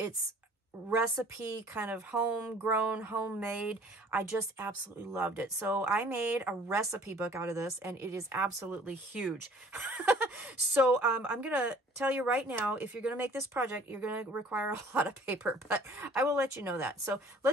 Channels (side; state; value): both; normal; correlation 0.53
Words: recipe, kind of homegrown, homemade. I just absolutely loved it. So I made a recipe book out of this, and it is absolutely huge. So I'm going to tell you right now, if you're going to make this project, you're going to require a lot of paper, but I will let you know that. So